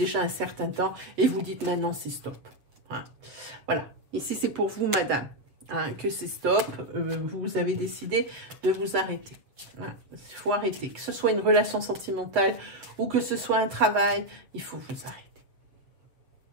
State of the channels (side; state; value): left; late; 7.3 ms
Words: un certain temps et vous dites maintenant c'est stop. Hein. Voilà, ici c'est pour vous madame, hein, que c'est stop, vous avez décidé de vous arrêter. Voilà. Il faut arrêter, que ce soit une relation sentimentale ou que ce soit un travail, il faut vous arrêter.